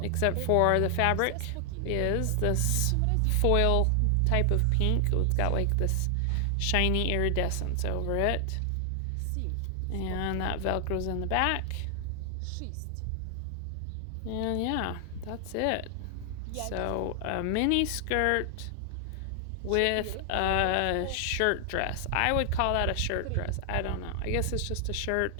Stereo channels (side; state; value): both; different; correlation 0.00